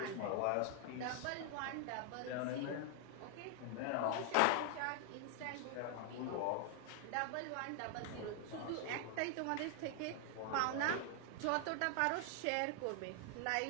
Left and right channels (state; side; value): different; both; correlation 0.00